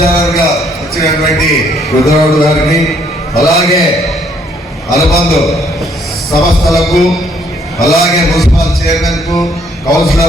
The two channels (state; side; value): normal; both; correlation 0.66